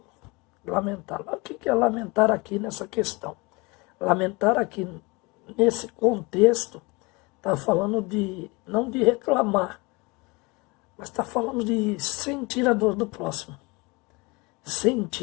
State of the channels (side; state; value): right; quieter; 26.0 dB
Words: lamentar. O que é lamentar aqui nessa questão? Lamentar aqui, nesse contexto, está falando de, não de reclamar, mas está falando de sentir a dor do próximo.